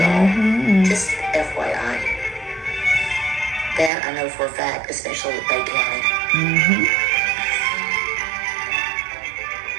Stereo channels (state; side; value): drops out; left; at 3.9 s